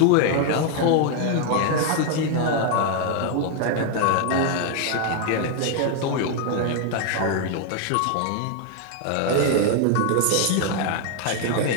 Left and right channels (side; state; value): both; different; correlation 0.00